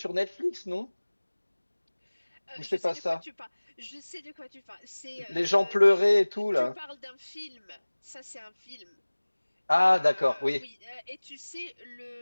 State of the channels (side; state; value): both; inverted; correlation -1.00